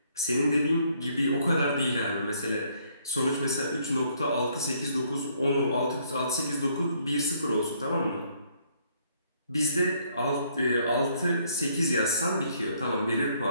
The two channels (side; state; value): both; inverted; correlation -0.67